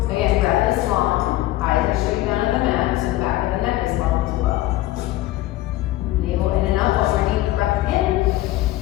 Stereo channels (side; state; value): right; quieter; 16.1 dB